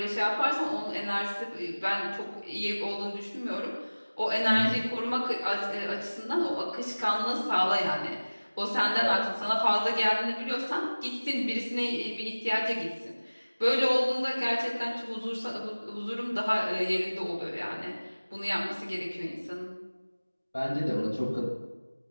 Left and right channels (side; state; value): both; inverted; correlation -1.00